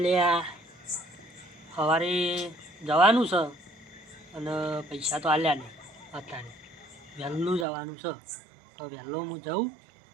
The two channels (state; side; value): drops out; left; at 7.7 s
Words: લે સવારે જવાનું છે અને પૈસા તો આલ્યા નહીં અત્યારે વહેલું જવાનું છે તો વહેલો હું જાઉં